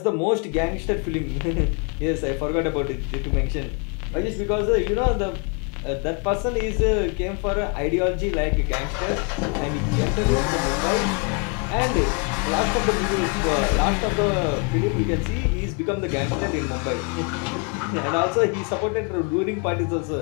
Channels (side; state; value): right; quieter; 35.4 dB